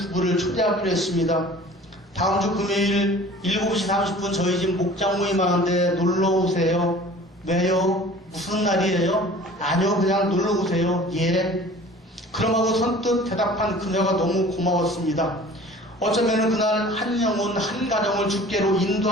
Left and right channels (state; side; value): normal; both; correlation 0.46